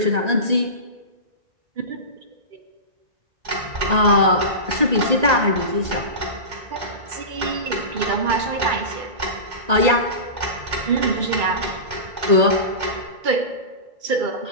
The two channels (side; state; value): left; late; 1.8 ms